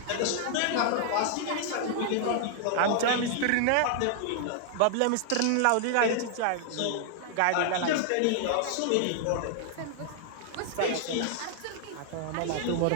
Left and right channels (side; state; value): both; different; correlation 0.00